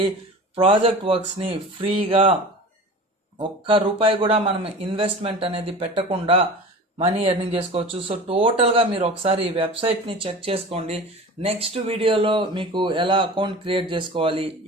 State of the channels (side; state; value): both; normal; correlation 0.36